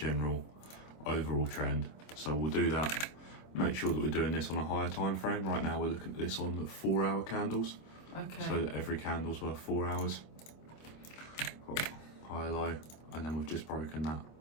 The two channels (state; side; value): late; right; 25 ms